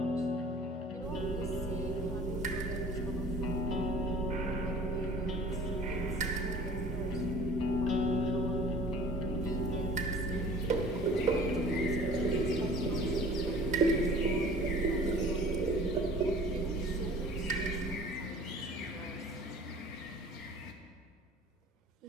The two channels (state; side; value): normal; both; correlation 0.47